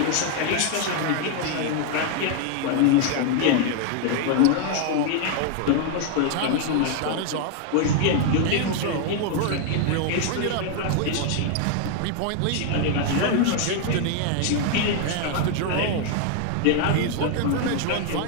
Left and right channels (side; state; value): both; different; correlation 0.00